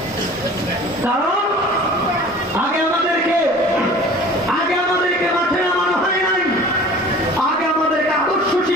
কারণ আগে আমাদেরকে মাঠে নামানো হয় নাই, আগে আমাদেরকে আদর্শ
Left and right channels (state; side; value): normal; both; correlation 0.44